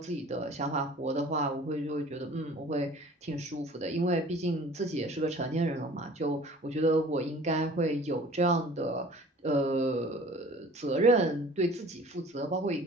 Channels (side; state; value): both; normal; correlation 0.47